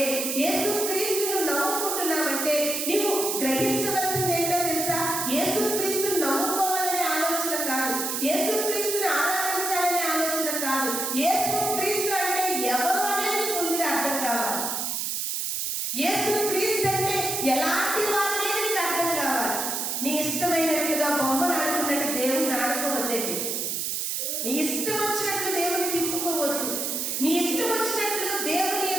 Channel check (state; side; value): noise; right; hiss, 1 dB below the sound